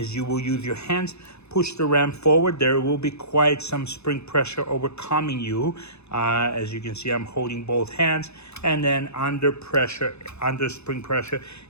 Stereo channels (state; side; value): late; right; 0.80 ms